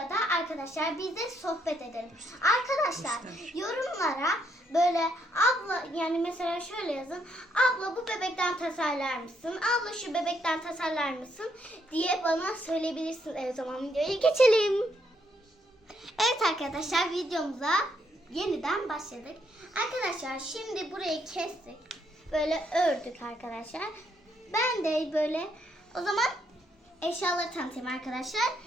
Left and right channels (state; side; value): normal; both; correlation 0.74